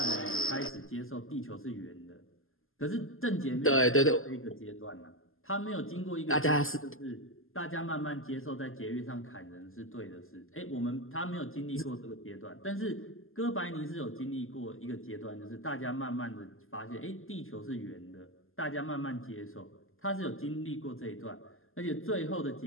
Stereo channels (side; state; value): right; late; 0.60 ms